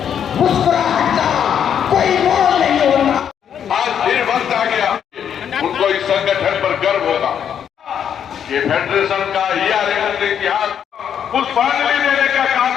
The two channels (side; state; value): right; quieter; 8.5 dB